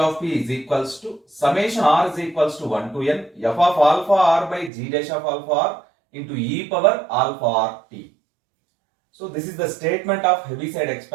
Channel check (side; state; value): left; drops out; at 4.7 s